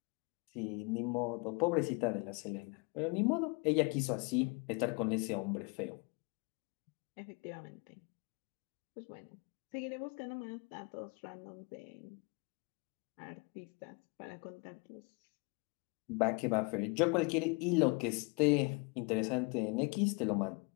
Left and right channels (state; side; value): quieter; right; 30.6 dB